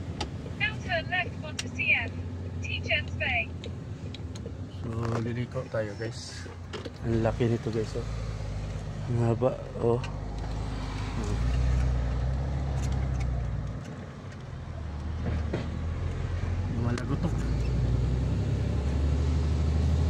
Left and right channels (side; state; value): both; identical; correlation 1.00